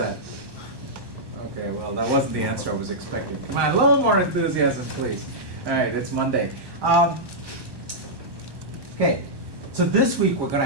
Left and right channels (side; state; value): left; late; 1.2 ms